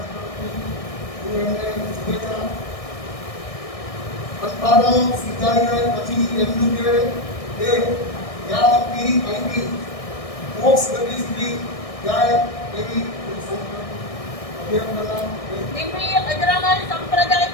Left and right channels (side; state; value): right; late; 1.6 ms